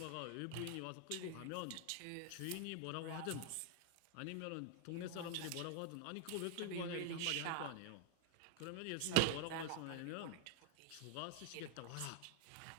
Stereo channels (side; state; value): both; different; correlation 0.00